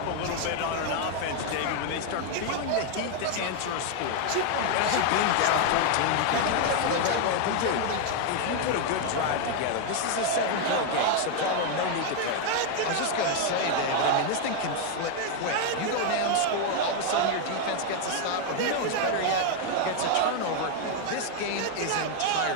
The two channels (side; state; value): both; different; correlation 0.00